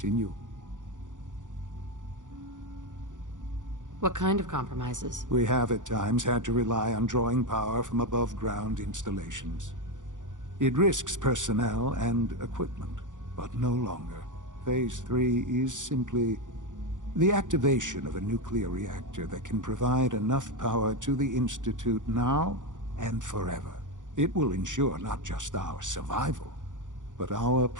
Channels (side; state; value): left; late; 0.87 ms